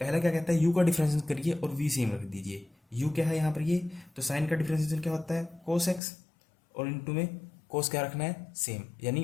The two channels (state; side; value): drops out; right; at 6.0 s